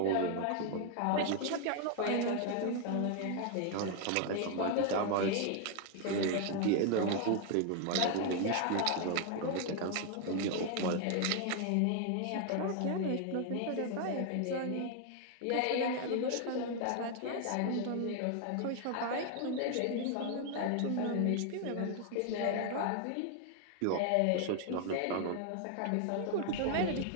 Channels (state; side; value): different; both; correlation 0.00